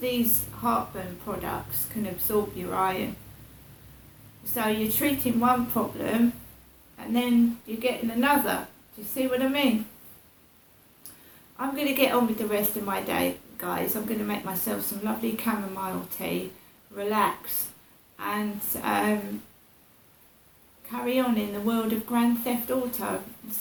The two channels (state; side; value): identical; both; correlation 1.00